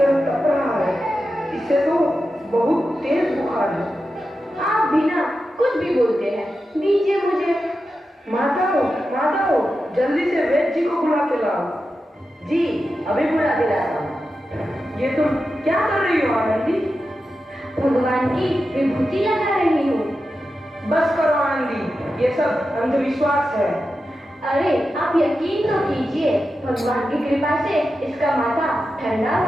तप रहा है। इससे तो बहुत तेज बुखार है। आप बिना कुछ भी बोलते हैं, दीजिए मुझे। माता हो, जल्दी से वैद्य जी को बुला के लाओ। जी, अभी बुला के लाता हूँ। ये तुम क्या कर रही हो आनंदी? भगवान की विभूति लगा रही हूँ। बस करो आनंदी, ये सब अंधविश्वास है। अरे आप यकीन तो कीजिए, भगवान की कृपा से इसका माथा ठंडा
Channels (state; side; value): normal; both; correlation 0.91